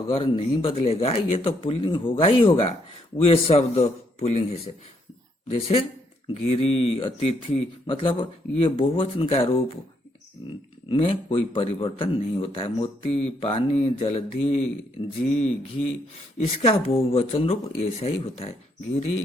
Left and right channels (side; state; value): both; normal; correlation 0.73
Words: नहीं बदलेगा, ये तो पुल्लिंग होगा ही होगा। वे शब्द पुल्लिंग है। जैसे गिरी, अतिथि, मतलब ये बहुवचन का रूप में कोई परिवर्तन नहीं होता है। मोती, पानी, जलधि, जी, घी, इसका बहुवचन रूप ऐसा ही होता है। गिरी,